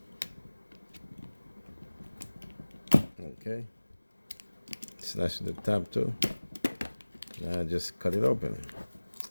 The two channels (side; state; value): both; inverted; correlation -1.00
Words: Okay. Slash the top too. Now just cut it open.